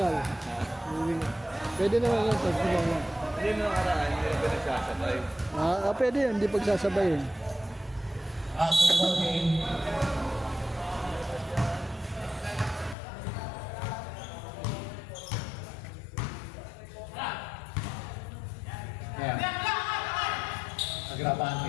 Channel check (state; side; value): drops out; right; at 13.0 s